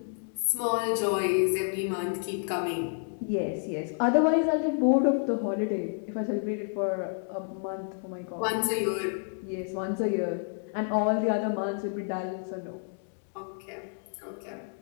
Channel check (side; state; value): right; silent; 58 dB below the other